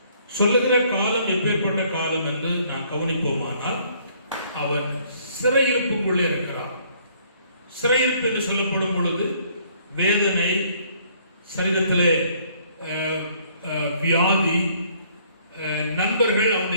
சொல்லுகிற காலம் எப்பேற்பட்ட காலம் என்று நான் கவனிப்போமானால், அவன் சிறையிருப்புக்குள்ளே இருக்கிறான். சிறையிருப்பு என்று சொல்லப்படும் பொழுது வேதனை, சரீரத்திலே வியாதி, நண்பர்கள்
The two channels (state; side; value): inverted; both; correlation -0.62